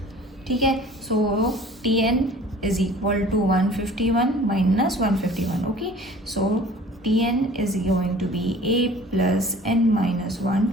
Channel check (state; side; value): normal; both; correlation 0.47